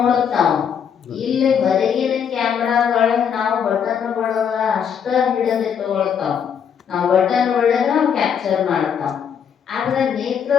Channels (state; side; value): quieter; right; 7.7 dB